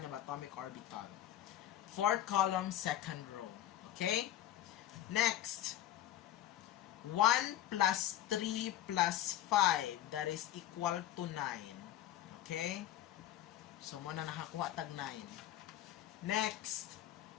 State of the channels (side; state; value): right; quieter; 12.9 dB